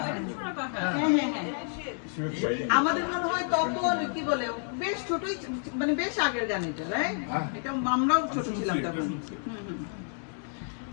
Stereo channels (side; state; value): right; silent; 58 dB below the other